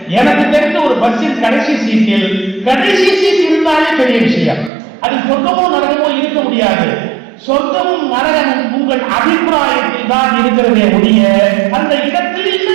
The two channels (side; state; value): left; drops out; at 4.7 s